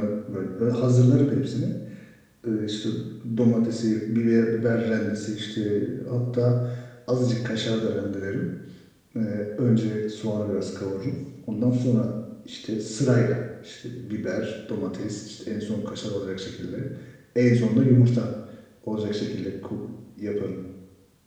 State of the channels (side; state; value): both; identical; correlation 1.00